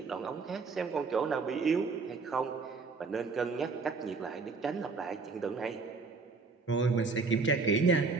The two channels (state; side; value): quieter; left; 4.4 dB